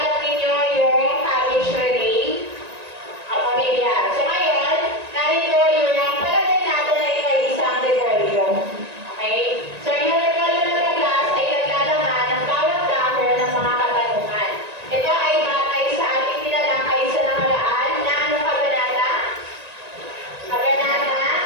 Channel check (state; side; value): late; left; 1.9 ms